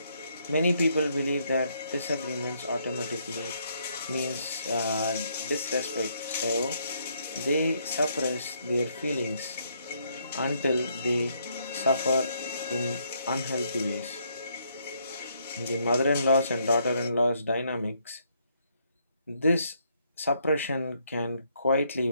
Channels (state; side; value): inverted; both; correlation -0.73